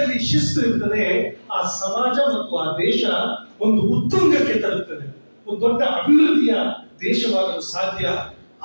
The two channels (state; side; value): inverted; both; correlation -1.00